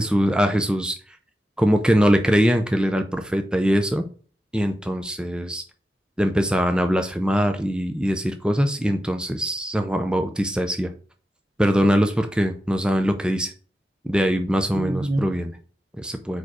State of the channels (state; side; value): normal; both; correlation 0.90